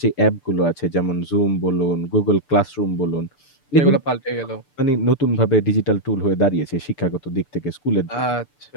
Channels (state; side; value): late; right; 6.8 ms